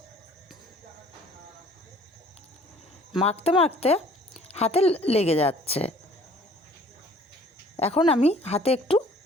মাখতে মাখতে হাতে লেগে যাচ্ছে। এখন আমি হাতে একটু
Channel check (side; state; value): both; normal; correlation 0.54